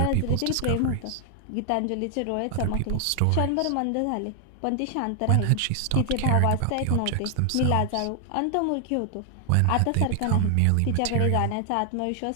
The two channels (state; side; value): different; both; correlation 0.00